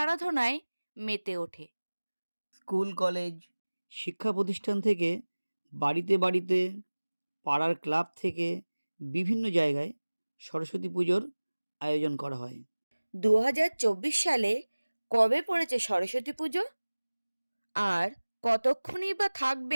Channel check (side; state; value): both; inverted; correlation -1.00